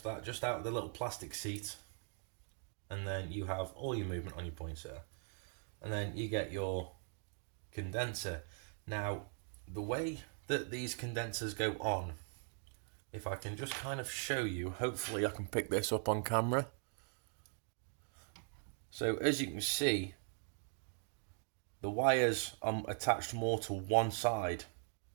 that just out of the little plastic seat, and then you have all your movement on your points there. And then you get your condenser. Now the way that these condensers go on, if I can just kind of show you, hopefully I can pick this up on camera. So as you can see, the wires are attached more to one side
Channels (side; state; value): left; silent; 51 dB below the other